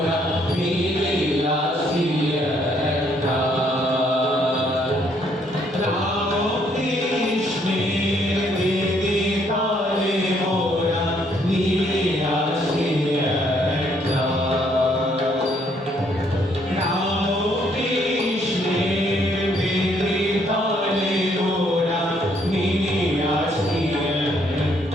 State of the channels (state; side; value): normal; both; correlation 0.68